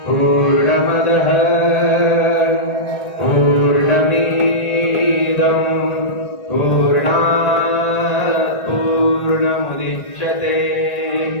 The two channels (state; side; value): late; right; 1.4 ms